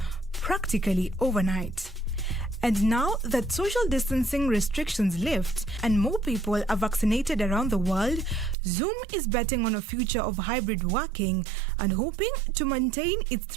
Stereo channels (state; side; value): drops out; left; at 8.6 s